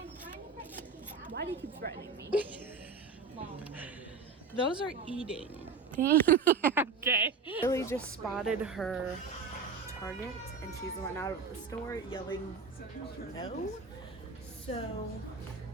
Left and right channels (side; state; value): left; quieter; 5.0 dB